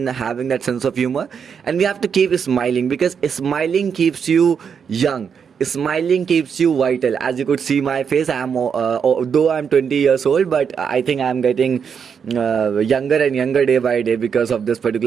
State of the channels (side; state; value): left; quieter; 6.9 dB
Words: having that sense of humor, and we have to keep smiling, because smiling keeps you young, smiling keeps you vital. As you could see my face, though I'm 20 years old, but I think I'm getting younger and younger day by day because of this